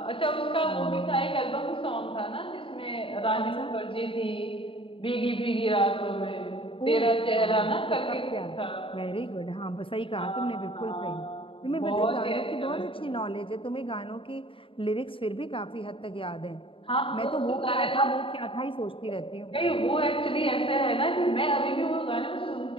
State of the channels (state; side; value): late; right; 0.26 ms